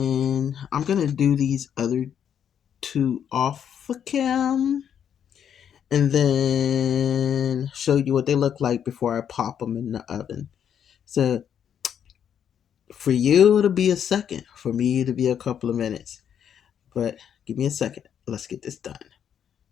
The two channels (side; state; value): right; quieter; 8.7 dB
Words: I'm going to do these other two off cam and then show you what they look like before I pop them in the oven. So for you, it'll be a second. For me, it'll be a couple of minutes. But give me a second. Let's get this done.